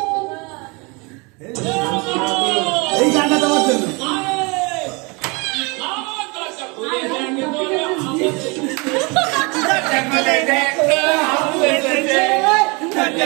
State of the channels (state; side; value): quieter; left; 28.8 dB